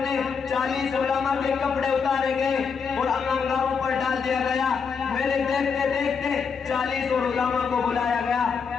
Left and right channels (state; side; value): quieter; right; 5.9 dB